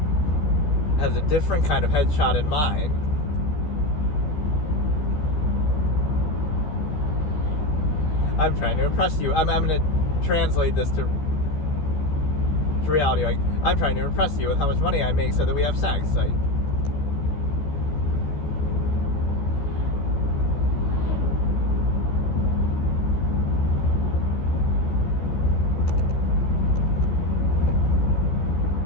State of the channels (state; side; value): late; right; 13 ms